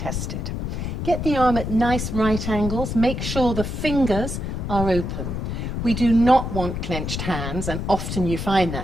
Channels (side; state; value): left; noise; rumble, 4 dB below the sound